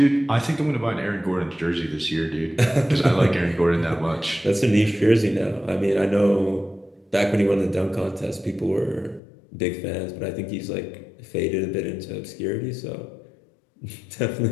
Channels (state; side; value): drops out; right; at 9.2 s